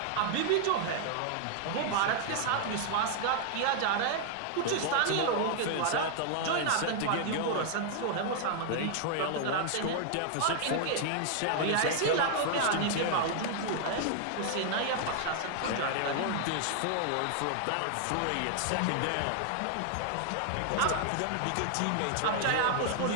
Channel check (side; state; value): both; different; correlation 0.00